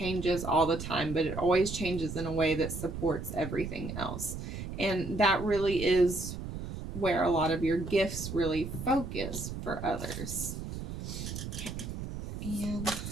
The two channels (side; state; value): right; noise; rumble, 7 dB below the sound